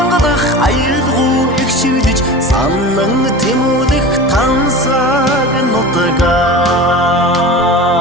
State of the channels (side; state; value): both; normal; correlation 0.33